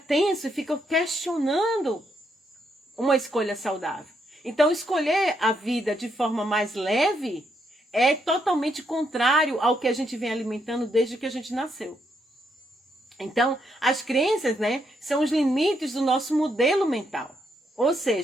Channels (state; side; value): normal; both; correlation 0.77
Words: e fica questionando uma escolha saudável. Então, escolher a vida de forma mais leve é totalmente contrário ao que a gente vem alimentando desde que a gente nasceu. Então, as crenças, né, são os limites do nosso modelo mental. Ou